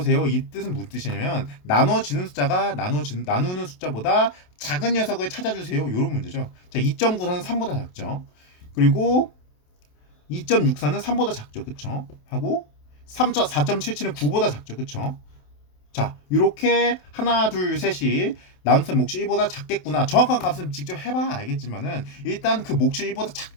이 뜻은 무슨 뜻이냐면 나누어지는 숫자가 나누는 숫자보다 작은 녀석을 찾아주세요. 이런 문제죠. 자, 2.94는 3보다 작죠. 그리고 2.64는 3보다 작죠. 그쵸? 하고 4.77은 9보다 작죠. 그쵸? 자, 이렇게 하나, 둘, 셋이 나눗셈 몫이 1보다 작겠구나. 정확한 값은 직접 해봐야 알겠지만은 일단 그 몫이 1보다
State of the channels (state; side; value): late; right; 28 ms